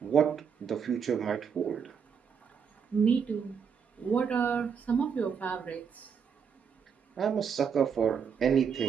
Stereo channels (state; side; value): quieter; left; 6.8 dB